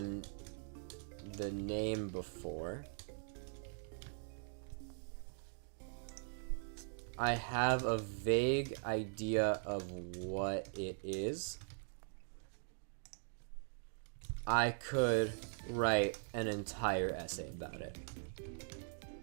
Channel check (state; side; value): silent; left; digital silence